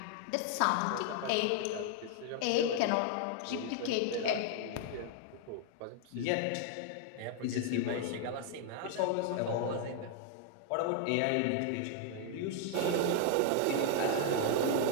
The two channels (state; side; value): different; both; correlation 0.00